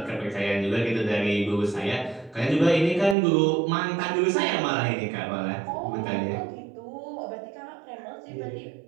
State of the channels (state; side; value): drops out; left; at 3.2 s